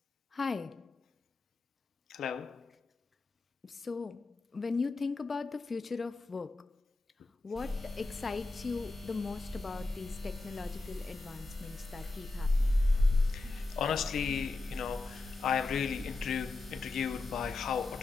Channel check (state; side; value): quieter; right; 3.3 dB